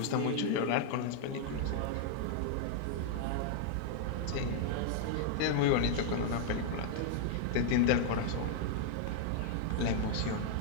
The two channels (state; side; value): different; both; correlation -0.01